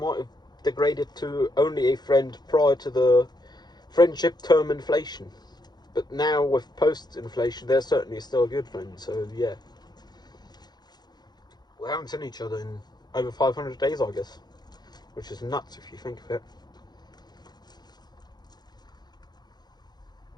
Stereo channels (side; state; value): right; late; 0.20 ms